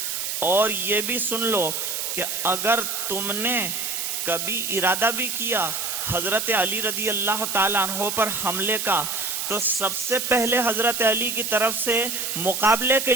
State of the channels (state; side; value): noise; right; hiss, 2 dB below the sound